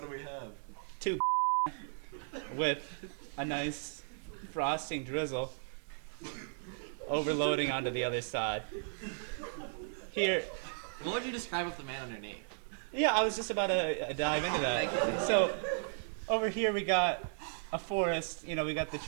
we have? 2 with a nice frosting drizzle overloading onto the other side. Here, What would you describe with the man underneath? yeah, I was just about to dive into that. So, over here we got a forest, we got the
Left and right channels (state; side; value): silent; left; 54 dB below the other